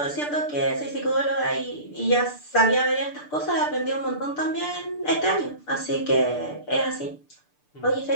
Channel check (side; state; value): right; late; 6.8 ms